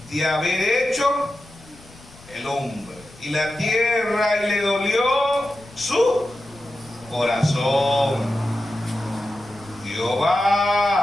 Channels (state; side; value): noise; left; rumble, 23 dB below the sound